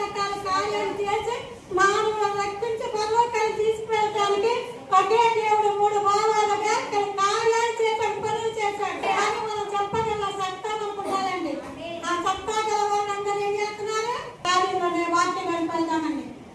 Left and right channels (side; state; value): both; identical; correlation 1.00